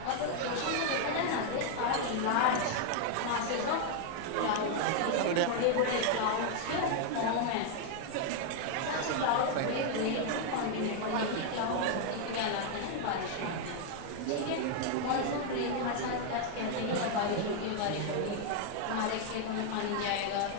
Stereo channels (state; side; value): different; both; correlation 0.00